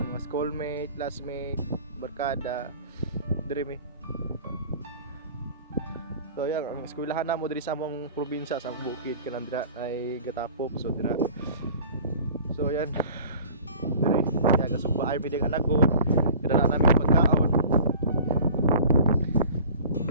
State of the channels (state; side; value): inverted; both; correlation -0.44